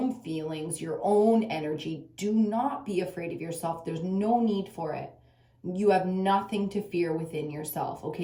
feelings, your own energy. Do not be afraid of yourself. There's no need for it. You have nothing to fear within yourself,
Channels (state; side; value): identical; both; correlation 1.00